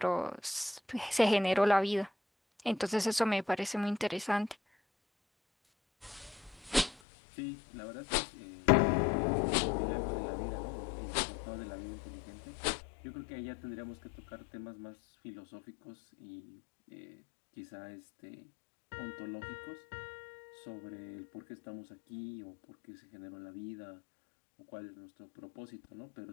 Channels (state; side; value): drops out; right; at 7.0 s